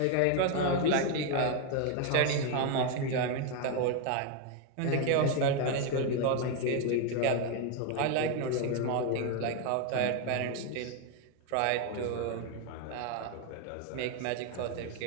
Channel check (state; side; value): different; both; correlation 0.01